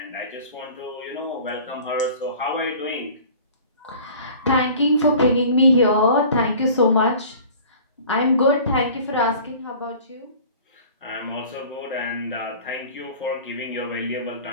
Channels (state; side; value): inverted; both; correlation -0.45